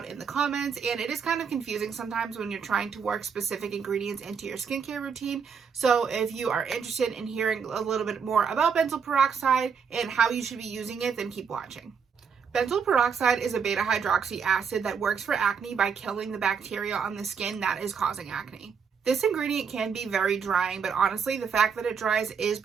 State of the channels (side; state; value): left; quieter; 6.4 dB